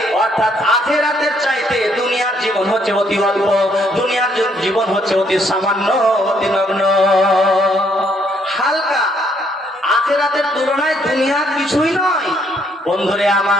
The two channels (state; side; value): normal; both; correlation 0.69